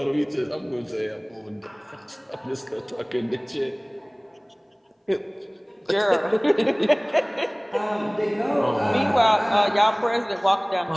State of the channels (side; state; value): both; identical; correlation 1.00